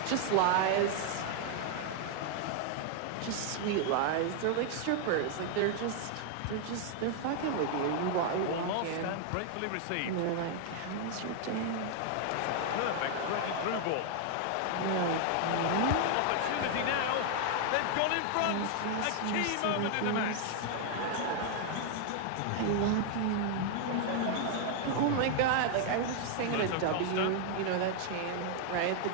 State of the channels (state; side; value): different; both; correlation 0.00